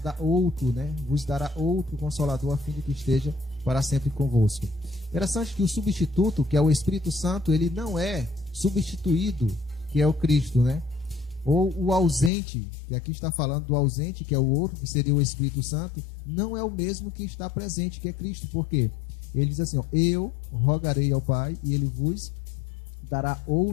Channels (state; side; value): drops out; right; at 12.3 s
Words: outro, né? Vos dará outro consolador, a fim de que esteja para sempre convosco. Interessante que o substituto, que é o Espírito Santo, ele não é substituído, que é o Cristo, né? Ou o ausente, que aqui está falando do ausente, que é o outro, que seria o Espírito Santo, não é o mesmo que está presente, que é Cristo. Por quê? Ele diz assim, eu rogarei ao Pai e ele vos dará